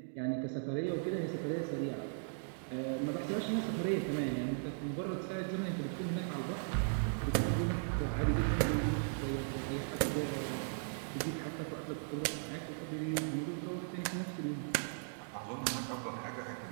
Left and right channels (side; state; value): left; silent; digital silence